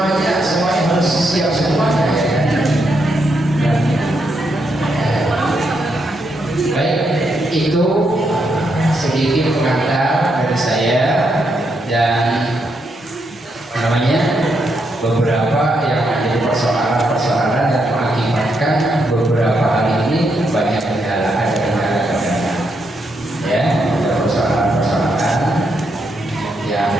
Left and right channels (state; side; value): normal; both; correlation 0.80